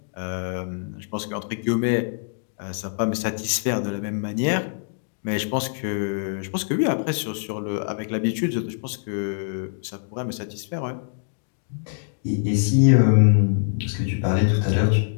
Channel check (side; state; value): right; silent; digital silence